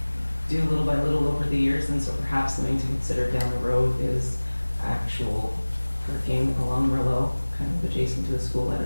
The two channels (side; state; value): both; inverted; correlation -1.00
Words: do little by little over the years, and so perhaps something to consider down the road is actual parking along Merlot, kind of adjacent to the school. I